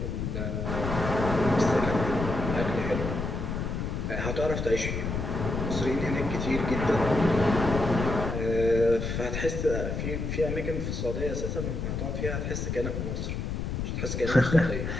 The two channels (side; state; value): left; noise; rumble, 3 dB below the sound